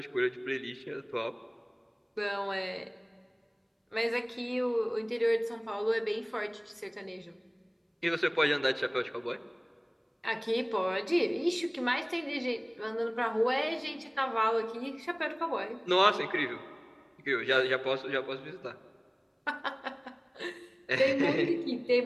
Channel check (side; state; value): both; identical; correlation 1.00